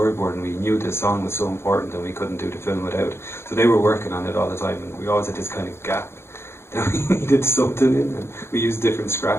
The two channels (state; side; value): late; right; 0.12 ms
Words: we knew the song was so important and we couldn't do the film without it. So they were working on it all the time, and we always had this kind of gap that we needed something in, and we used different